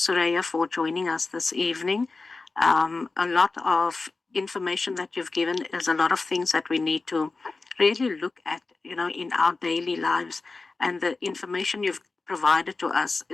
for joining us this evening. A lot of information that you've given is a lot of things that we need to really look at, in our daily lives. And the information you've provided to us,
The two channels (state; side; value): quieter; right; 3.8 dB